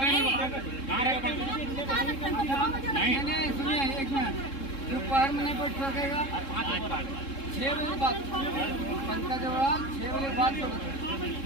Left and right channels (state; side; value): late; right; 3.7 ms